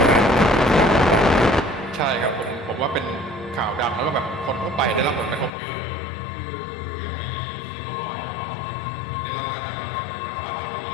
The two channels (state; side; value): drops out; right; at 5.5 s